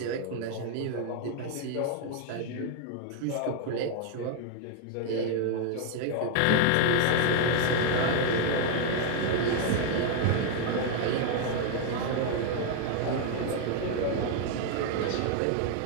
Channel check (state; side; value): different; both; correlation 0.00